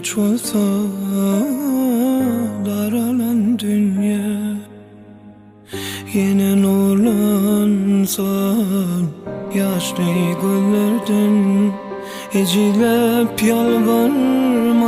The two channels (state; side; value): identical; both; correlation 1.00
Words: olsa daralan dünya yine nurlansa yaşlı güllerden ecilep